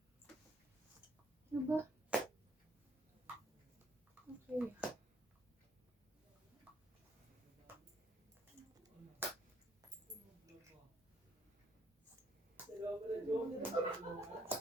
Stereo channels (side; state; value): both; normal; correlation 0.67